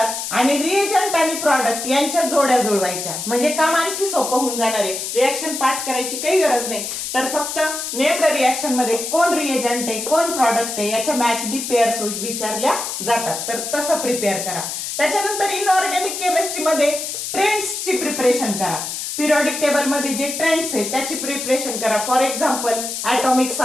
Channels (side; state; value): left; noise; hiss, 5 dB below the sound